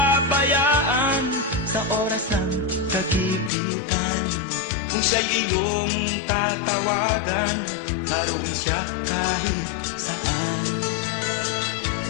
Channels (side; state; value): right; drops out; at 3.5 s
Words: sa oras ng kagipitan. Kung siya'y iyong tatawagan, naroon siya kahit saan.